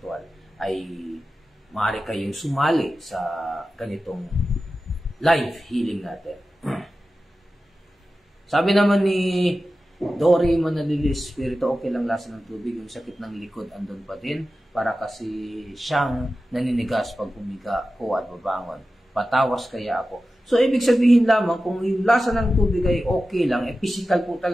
ay maaari kayong sumali sa ganitong live healing natin. Sabi naman ni Dory Manalilis, spirito, okay lang lasa ng tubig, yung sakit ng likod andun pa din, para kasi siyang naninigas pag humiga ko at babangon. Patawas kaya ako. So, ibig sabihin lamang, kung yung lasa ng tubig ay okay lang, physical po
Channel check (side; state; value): both; normal; correlation 0.94